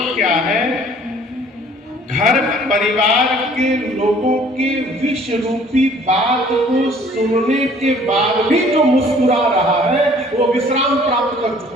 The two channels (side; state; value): both; normal; correlation 0.55